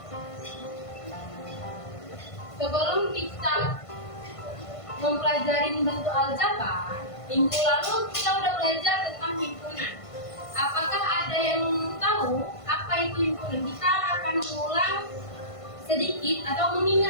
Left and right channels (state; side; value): late; right; 1.5 ms